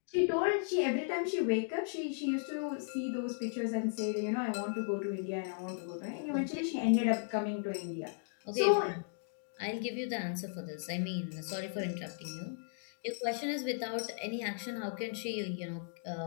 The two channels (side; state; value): right; silent; digital silence